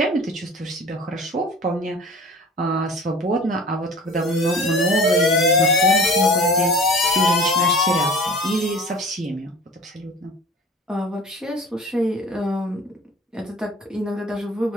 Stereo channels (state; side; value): normal; both; correlation 0.41